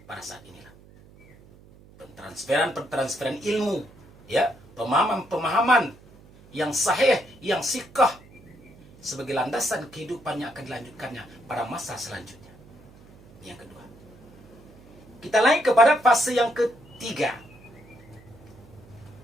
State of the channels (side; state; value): right; noise; hum, 24 dB below the sound